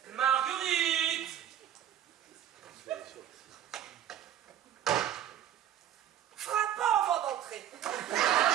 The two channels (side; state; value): left; quieter; 10.8 dB